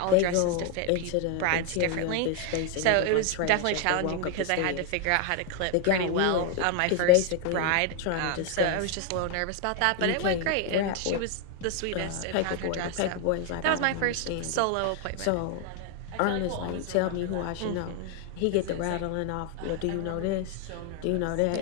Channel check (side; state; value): both; different; correlation 0.01